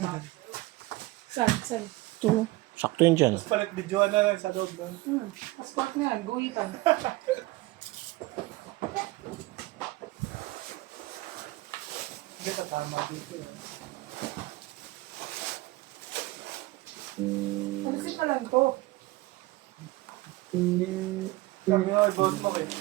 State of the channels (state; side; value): quieter; left; 19.9 dB